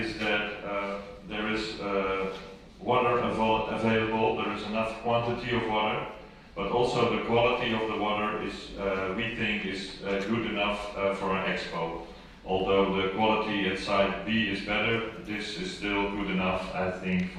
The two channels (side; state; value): both; identical; correlation 1.00